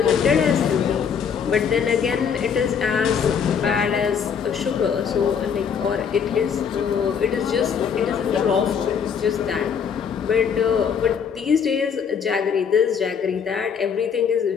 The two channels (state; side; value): quieter; right; 7.0 dB